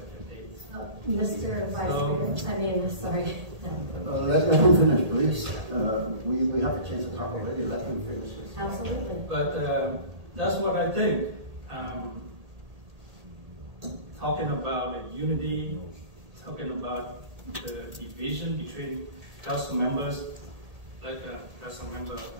dates. Mr. Vice Mayor, I mean, sorry. Let him finish, please. We have a chance to talk already. Let him finish. Absolutely. But that's what I think. Talking about the unity, talking about the division between council members, like Council Member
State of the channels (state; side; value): late; left; 1.8 ms